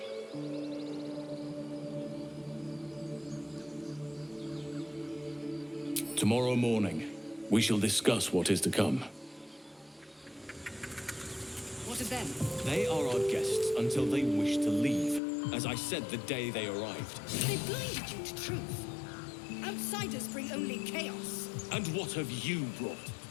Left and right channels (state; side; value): drops out; right; at 15.2 s